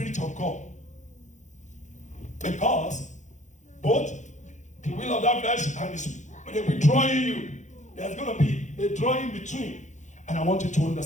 of God. Because both the will of that flesh and the Spirit, they'll be drawing you. There's going to be a drawing between. And I want you to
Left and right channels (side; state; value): right; late; 0.35 ms